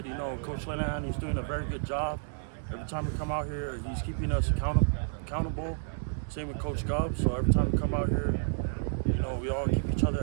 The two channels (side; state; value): left; silent; digital silence